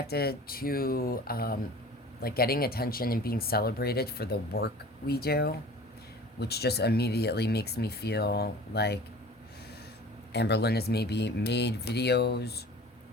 to like getting attention and being celebrated for the work we do, which just immediately makes me feel like Amberlynn has maybe made videos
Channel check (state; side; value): normal; both; correlation 0.43